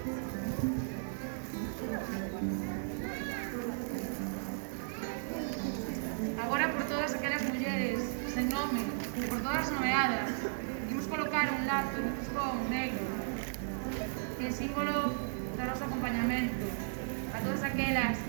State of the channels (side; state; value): left; silent; digital silence